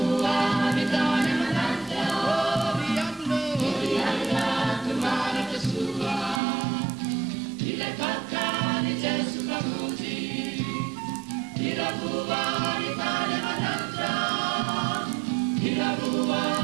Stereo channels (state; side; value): drops out; left; at 6.4 s